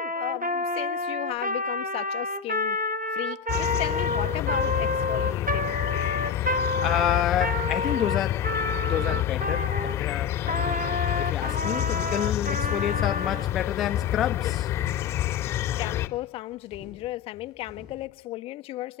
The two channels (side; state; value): right; quieter; 7.0 dB